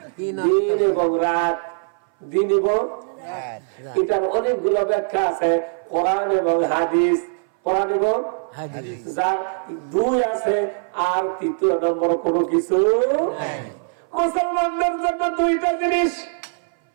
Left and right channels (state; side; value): silent; left; 61 dB below the other